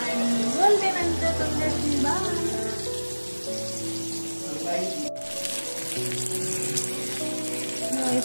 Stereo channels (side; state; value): both; inverted; correlation -1.00